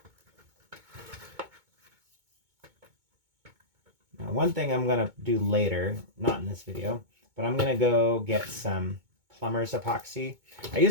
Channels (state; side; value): late; left; 2.2 ms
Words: Now, one thing I'm going to do later, not in this video, but I'm going to go get some plumber's epoxy. I